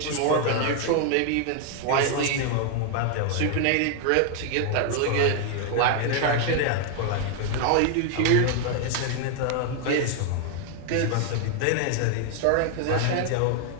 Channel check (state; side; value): different; both; correlation 0.00